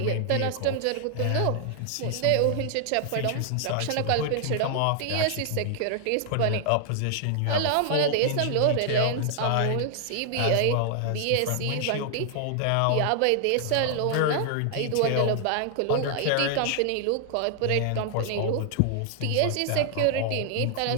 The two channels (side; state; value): both; different; correlation 0.00